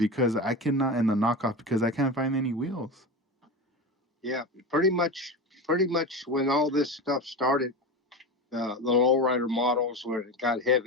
I cannot and the knockoff because I can't find any wheels. Yeah. Pretty much when all this stuff started, the lowrider models when it got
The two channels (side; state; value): both; normal; correlation 0.24